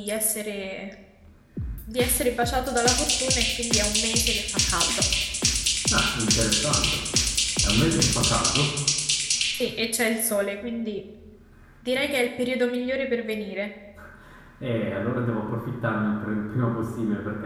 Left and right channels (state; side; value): identical; both; correlation 1.00